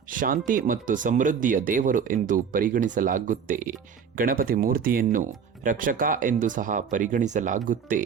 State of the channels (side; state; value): left; quieter; 6.8 dB